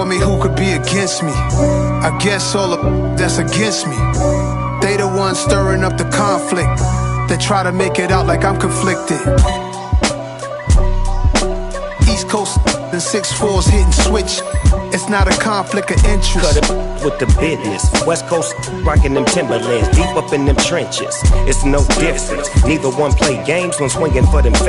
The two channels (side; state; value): both; identical; correlation 1.00